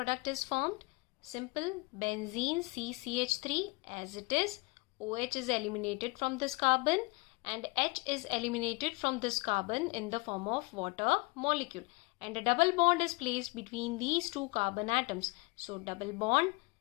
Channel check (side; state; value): right; quieter; 26.3 dB